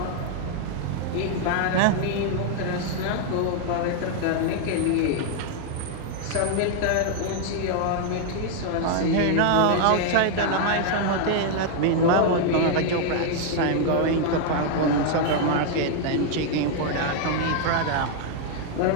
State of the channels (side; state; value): both; different; correlation 0.00